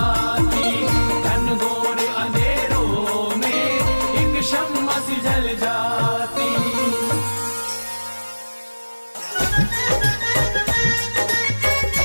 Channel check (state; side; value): inverted; both; correlation -1.00